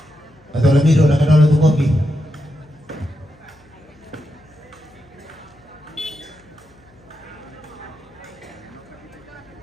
Atau lamiro na kadalo tu kopi.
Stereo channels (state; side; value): noise; left; hum, 29 dB below the sound